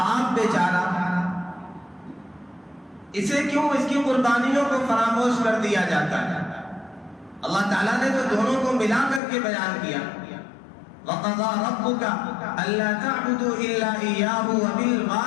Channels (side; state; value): right; drops out; at 9.2 s